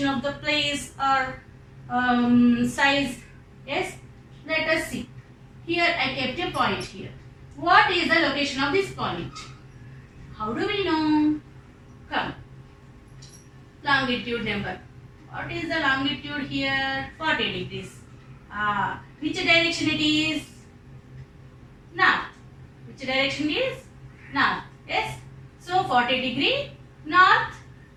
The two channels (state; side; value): identical; both; correlation 1.00